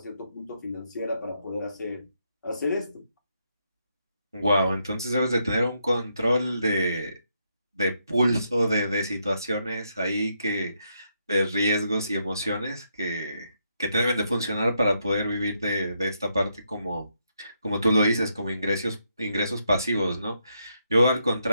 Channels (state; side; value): inverted; both; correlation -0.79